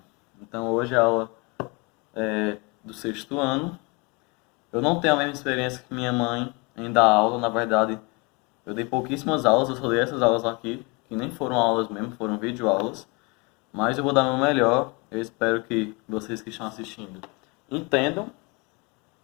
Então hoje a aula é do sexto ano. Eu não tenho a mesma experiência que minha mãe em dar aula, na verdade eu dei pouquíssimas aulas, eu só dei essas aulas aqui, que nem foram aulas mesmo, foram videoaulas. Mas eu vou dar o meu melhor. Eu espero que vocês que estão assistindo entendam.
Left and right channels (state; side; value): quieter; right; 28.2 dB